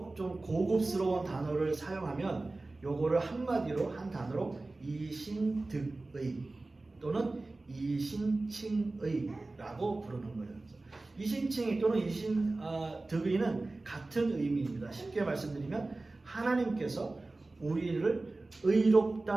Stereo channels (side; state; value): left; quieter; 3.2 dB